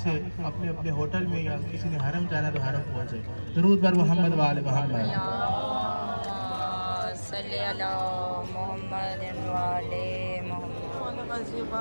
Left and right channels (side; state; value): both; inverted; correlation -1.00